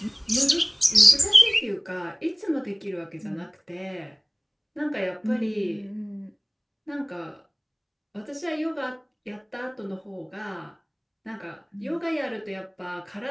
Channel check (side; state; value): both; identical; correlation 1.00